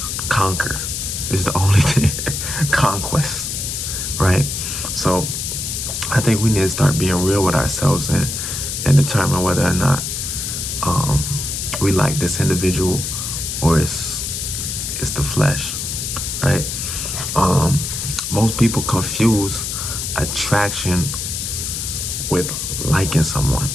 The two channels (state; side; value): noise; left; hiss, 4 dB below the sound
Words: conquer is the only thing. Conquest, right? So I think we need to start being real with ourselves and determine whether or not we like this individual, or it's the flesh, right? Most people confuse attraction with liking someone,